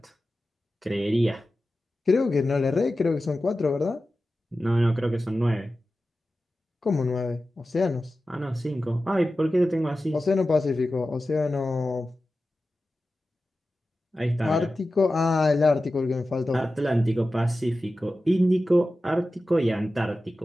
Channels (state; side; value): normal; both; correlation 0.94